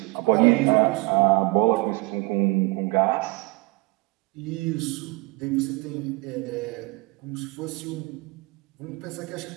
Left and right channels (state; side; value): quieter; left; 22.7 dB